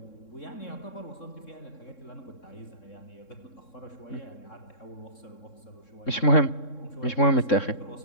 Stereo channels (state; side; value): late; right; 3.7 ms